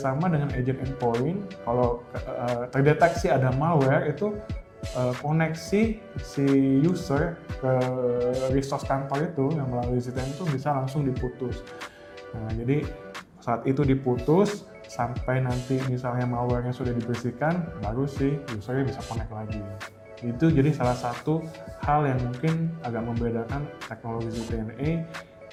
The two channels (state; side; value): identical; both; correlation 1.00